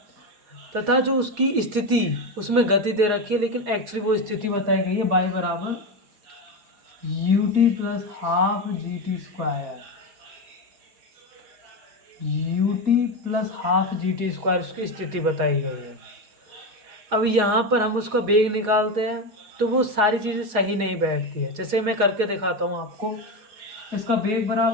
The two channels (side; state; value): left; late; 4.8 ms